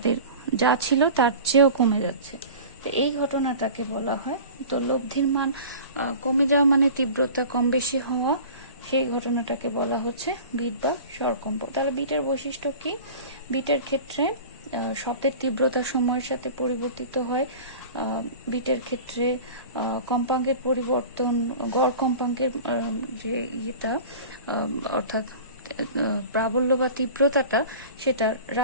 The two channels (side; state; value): both; inverted; correlation -0.38